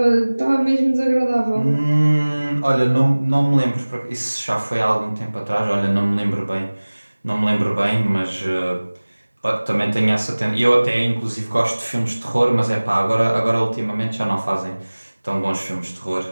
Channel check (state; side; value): inverted; both; correlation -1.00